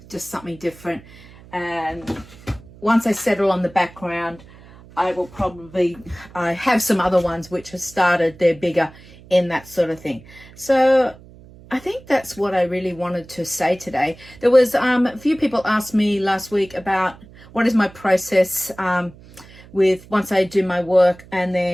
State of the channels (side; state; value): right; noise; hum, 22 dB below the sound